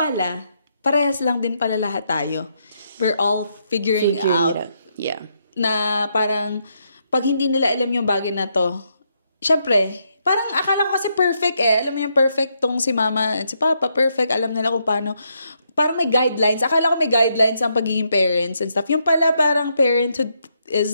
parehas lang din pala lahat tayo. We're all figuring out. Yeah. Na parang, pag hindi nila alam yung bagay na to, syempre, parang akala ko kasi perfect eh. Alam mo yung perfect tong si mama at si papa, perfect. Alam nila kung paano. Parang may guidelines. Akala ko may guidelines ang pagiging parents and stuff. Yung pala parang parenthood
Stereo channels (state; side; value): inverted; both; correlation -0.78